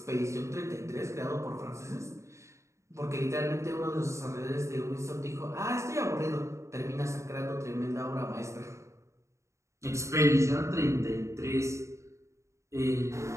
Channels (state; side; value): late; left; 0.14 ms